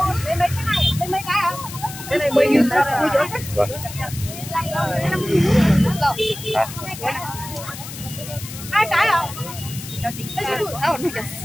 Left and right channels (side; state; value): left; noise; hiss, 12 dB below the sound